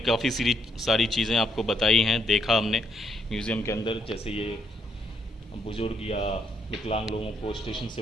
काफ़ी सारी चीज़ें आपको बताई हैं, देखा हमने म्यूज़ियम के अंदर, जैसे ये बुज़ुर्ग या विकलांग लोगों को स्टेशन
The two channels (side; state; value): both; normal; correlation 0.74